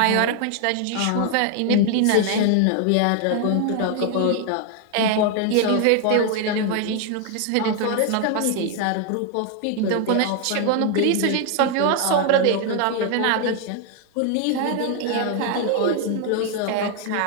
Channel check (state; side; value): different; both; correlation 0.00